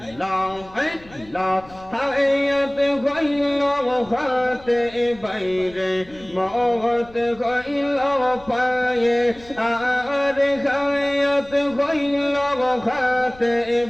আল্লাহ। হায়াত হইল হাতে বাইরে, মওত হইল পায়ে, আর হায়াত হইল হাতে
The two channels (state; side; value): noise; left; rumble, 23 dB below the sound